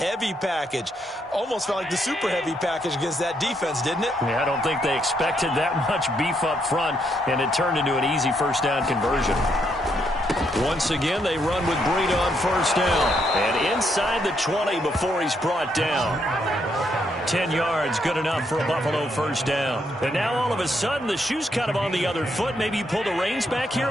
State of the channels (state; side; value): normal; both; correlation 0.76